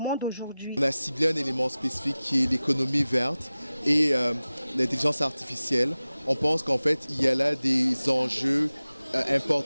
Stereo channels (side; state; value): both; inverted; correlation -0.97